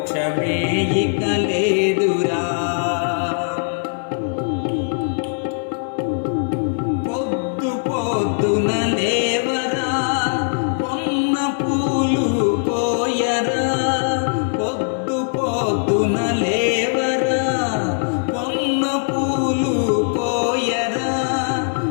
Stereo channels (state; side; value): silent; right; digital silence